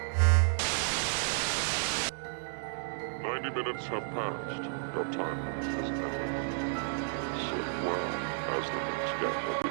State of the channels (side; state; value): left; silent; digital silence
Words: 90 minutes have passed. Your time limit has ended. Sit well, as the next game will